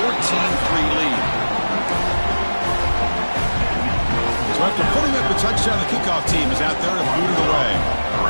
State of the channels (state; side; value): inverted; both; correlation -1.00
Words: 14-3 lead. So after putting up the touchdown, the kickoff team is out there to boot it away.